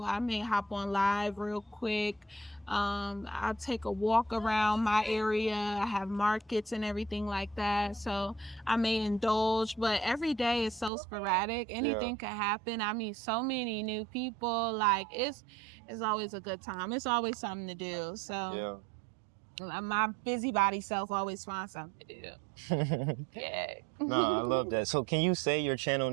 I may hop on live real quick. I'll take a walk around my area. I have markets and everything like that. So I may indulge, but every day is so sporadic. Anything could happen. I meet so many new people. Like it's always a good time. It's always something to do. So my busybody self always finds something to do. Yeah. No, I love that. So can you say your channel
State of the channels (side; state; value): left; drops out; at 10.9 s